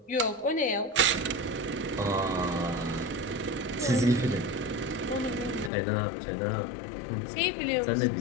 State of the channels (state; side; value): drops out; right; at 5.7 s